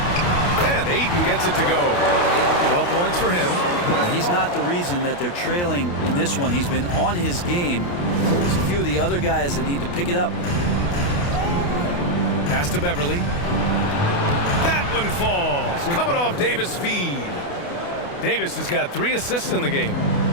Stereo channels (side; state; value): right; late; 28 ms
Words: Ayton gets it to go. 12 points for him. He's not the reason that they're trailing in this one. He's been on his game. There's a few of the other guys that need to pick it up. Pass to Beverly. That one falls. Coming off Davis' feed. Davis has got 3 assists in the game.